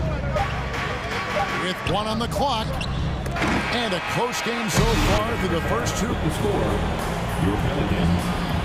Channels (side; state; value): both; identical; correlation 1.00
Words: With 1 on the clock. And a close game so far through the first 2. The score, your Pelicans,